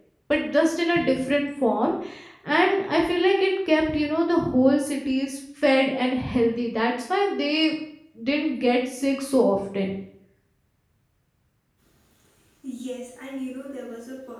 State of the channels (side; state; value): both; identical; correlation 1.00